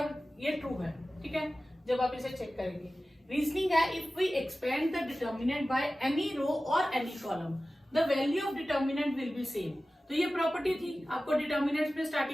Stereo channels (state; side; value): normal; both; correlation 0.96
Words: ये ट्रू है। ठीक है, जब आप इसे चेक करेंगे। रीजनिंग है, if we expand the determinant by any row और any column the value of determinant will be same. तो ये प्रॉपर्टी थी, आपको डिटर्मिनेंट में